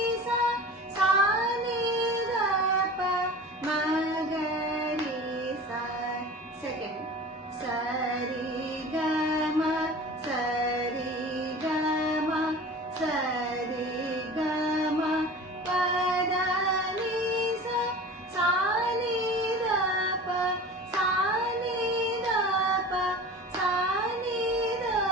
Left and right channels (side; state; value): both; normal; correlation 0.37